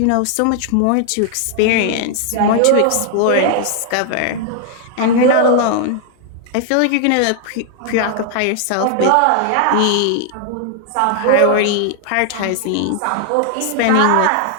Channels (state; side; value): different; both; correlation 0.00